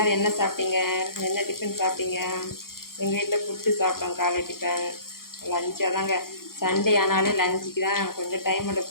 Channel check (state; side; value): late; right; 0.92 ms